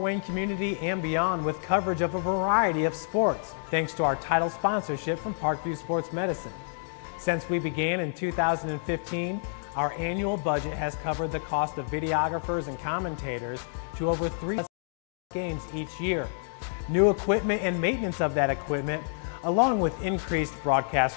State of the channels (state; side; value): silent; right; digital silence